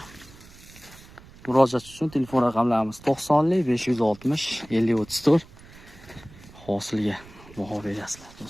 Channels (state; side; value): noise; right; rumble, 21 dB below the sound